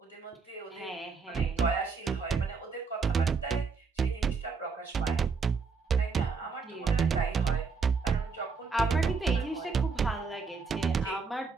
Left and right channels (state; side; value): quieter; left; 5.0 dB